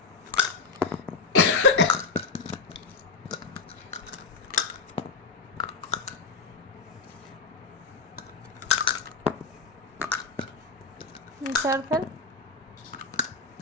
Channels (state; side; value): quieter; right; 4.4 dB